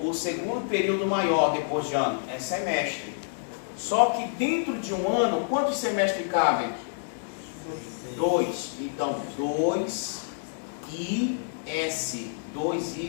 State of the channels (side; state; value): right; silent; digital silence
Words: segundo período maior depois de ano? É semestre. Só que dentro de um ano, quantos semestres cabem? 2. Então, 2 I S. 2